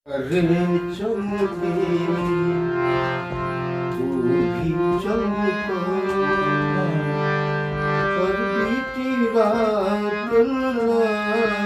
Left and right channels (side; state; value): both; identical; correlation 1.00